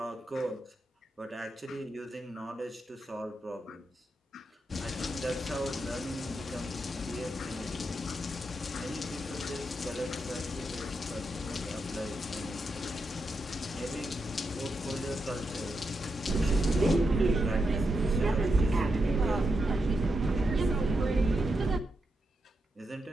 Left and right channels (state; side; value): normal; both; correlation 0.85